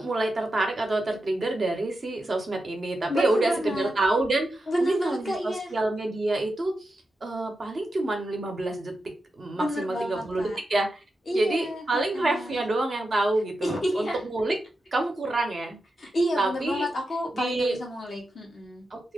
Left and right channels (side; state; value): both; normal; correlation 0.89